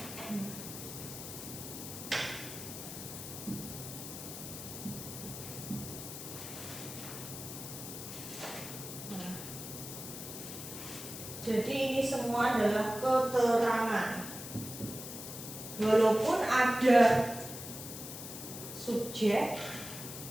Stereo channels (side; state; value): left; noise; hiss, 9 dB below the sound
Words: Jadi ini semua adalah keterangan. Walaupun ada subjek